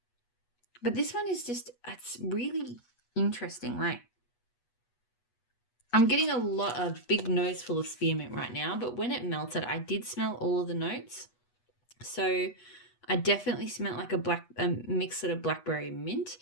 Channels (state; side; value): late; right; 8.2 ms